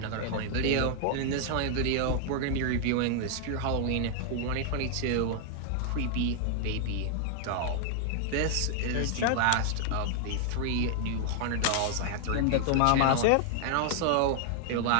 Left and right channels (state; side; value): different; both; correlation 0.00